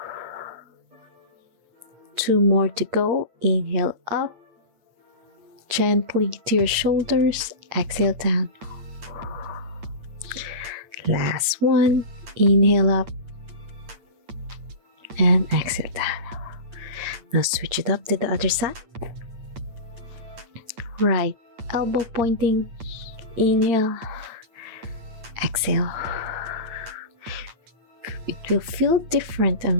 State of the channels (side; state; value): left; late; 8.8 ms